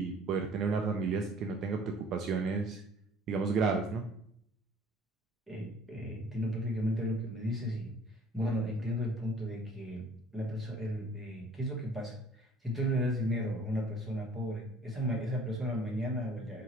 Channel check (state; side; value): normal; both; correlation 0.53